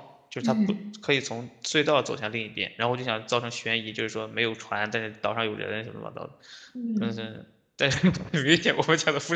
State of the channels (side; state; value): both; identical; correlation 1.00